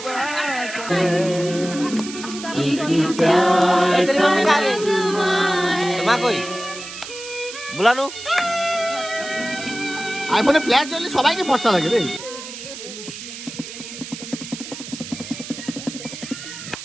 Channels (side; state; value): right; noise; hiss, 11 dB below the sound